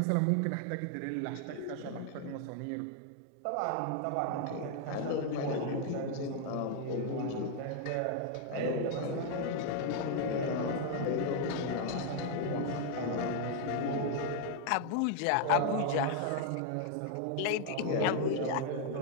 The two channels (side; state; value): both; different; correlation 0.00